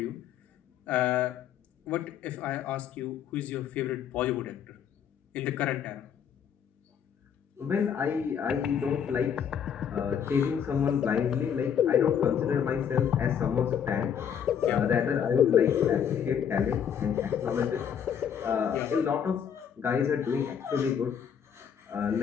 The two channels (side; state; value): right; quieter; 8.1 dB